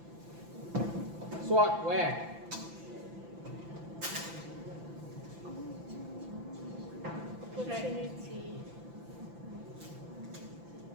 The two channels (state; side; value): late; left; 5.9 ms